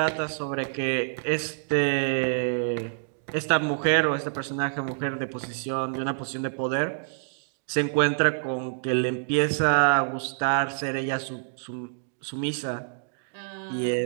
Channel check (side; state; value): left; silent; digital silence